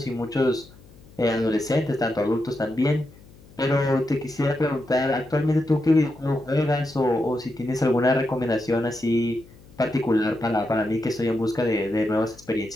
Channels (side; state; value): left; noise; hum, 24 dB below the sound